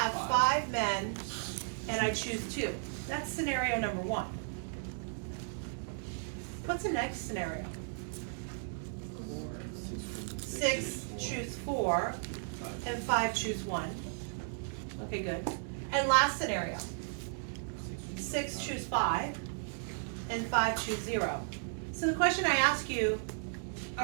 5 men and I choose 2. That's scenario number 1. What's the next scenario? 6 choose 4 and 5 choose 1. Okay, good. And last scenario. 6 choose 5 and 5 choose 0. So the question I ask you,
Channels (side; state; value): left; silent; digital silence